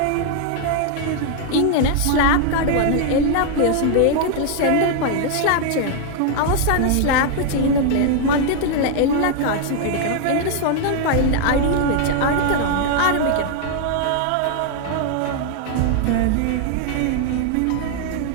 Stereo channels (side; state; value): both; different; correlation 0.00